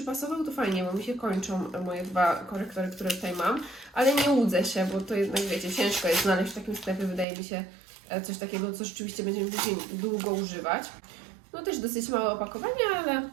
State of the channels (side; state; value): left; drops out; at 7.2 s